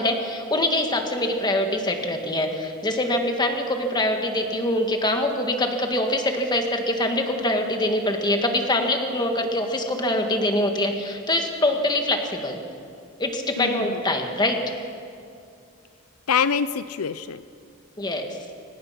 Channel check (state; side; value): normal; both; correlation 0.21